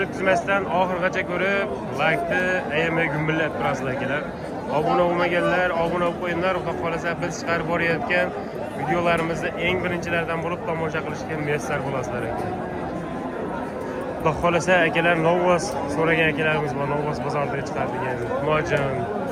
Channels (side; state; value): both; identical; correlation 1.00